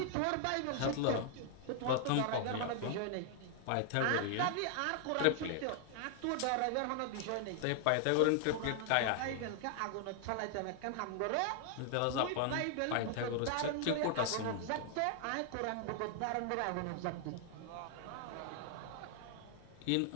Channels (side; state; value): both; different; correlation 0.00